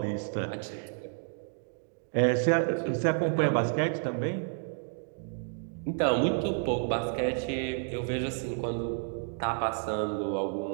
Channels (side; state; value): left; silent; 57 dB below the other